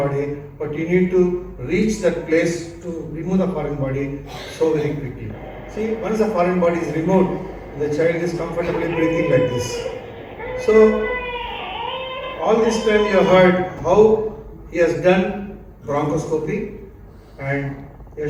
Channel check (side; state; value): both; identical; correlation 1.00